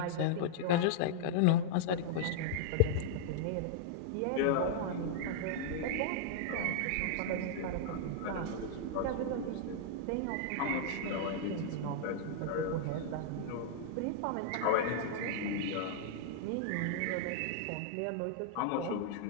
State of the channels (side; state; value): both; different; correlation -0.01